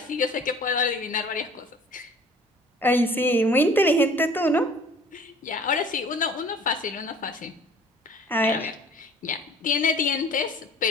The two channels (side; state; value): both; normal; correlation 0.50